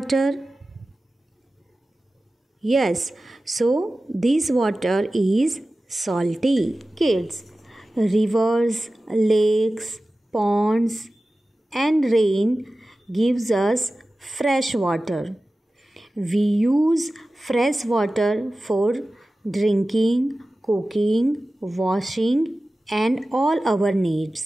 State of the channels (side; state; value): both; normal; correlation 0.96